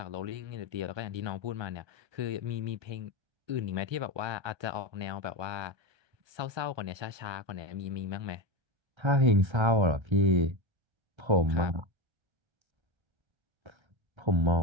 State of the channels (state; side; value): late; left; 1.3 ms